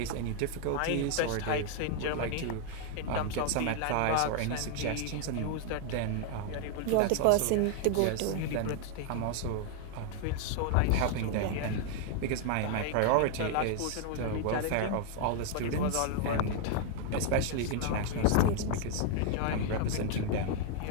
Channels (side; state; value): both; different; correlation 0.00